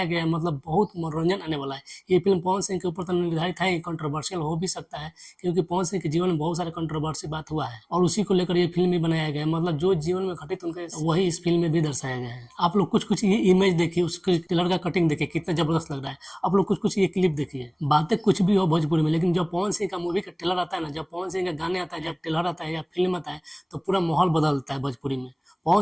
गया है, मतलब बहुत मनोरंजन आने वाला है। ये फिल्म पवन सिंह के ऊपर तो निर्धारित है, कंट्रोवर्शियल हो भी सकता है, क्योंकि पवन सिंह के जीवन में बहुत सारे कंट्रोवर्सी बात हुआ है और उसी को लेकर ये फिल्म भी बनाया गया है। मतलब जो जीवन में घटित उनके वही इस फिल्म में भी दर्शाया गया है। आप लोग कुछ ये इमेज देखिए, उसके ट्रेलर का कटिंग देखिए, कितना जबरदस्त लग रहा है। आप लोग कुछ ये क्लिप देखिए। बातें कुछ भी हो भोजपुरी में, लेकिन जब पवन सिंह का मूवी का ट्रेलर आता है ना, जब पवन सिंह का गाने आता है, जब ट्रेलर आता है या फिल्म आता है, तो पूरा माहौल बदलता है भोजपुरी में। पवन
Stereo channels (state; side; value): identical; both; correlation 1.00